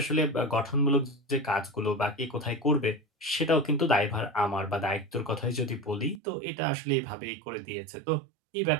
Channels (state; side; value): drops out; left; at 6.2 s